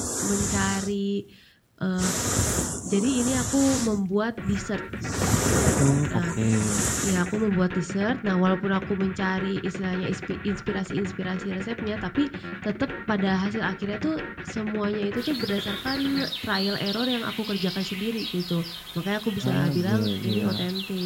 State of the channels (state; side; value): identical; both; correlation 1.00